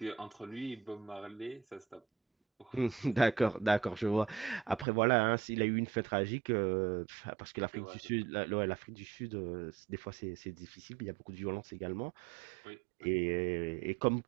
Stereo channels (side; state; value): left; drops out; at 4.9 s